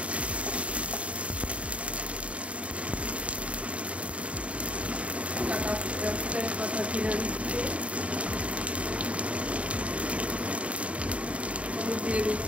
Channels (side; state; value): left; late; 0.064 ms